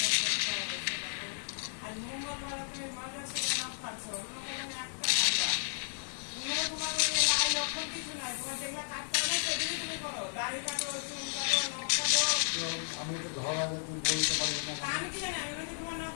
আমি তো ধরা তুমি বলতে পারবো না আমি কি জানি আমি তোমার নখ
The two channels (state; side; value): silent; right; 55 dB below the other